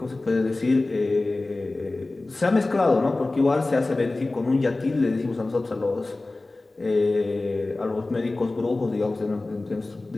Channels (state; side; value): quieter; right; 3.1 dB